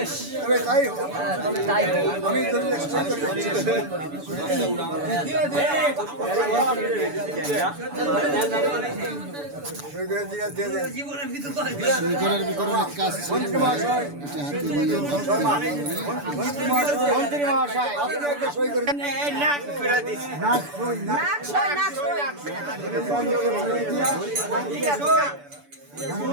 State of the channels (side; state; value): left; late; 6.9 ms